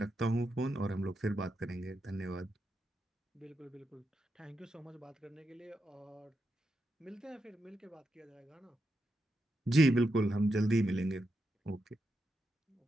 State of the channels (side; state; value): both; normal; correlation 0.85